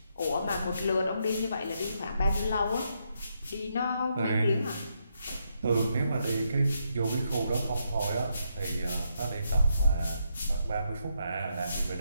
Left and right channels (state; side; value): inverted; both; correlation -0.79